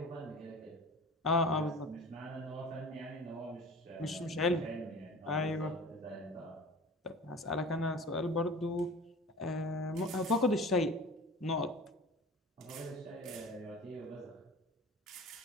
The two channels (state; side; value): normal; both; correlation 0.39